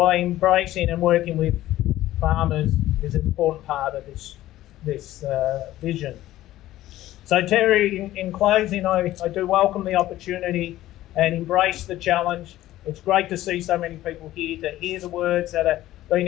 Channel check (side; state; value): right; quieter; 14.9 dB